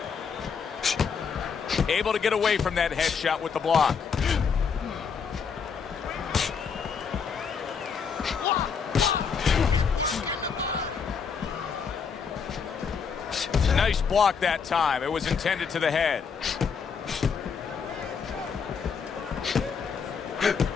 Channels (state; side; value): quieter; right; 6.1 dB